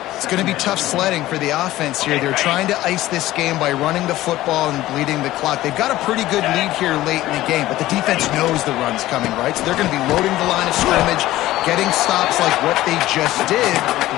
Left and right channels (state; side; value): quieter; right; 15.8 dB